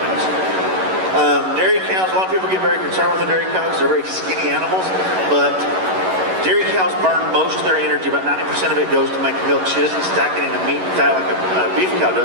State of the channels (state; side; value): late; left; 11 ms